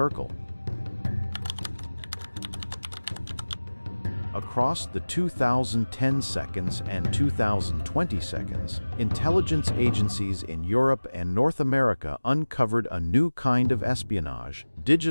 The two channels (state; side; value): inverted; both; correlation -1.00